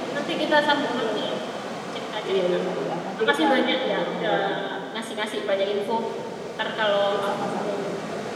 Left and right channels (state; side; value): identical; both; correlation 1.00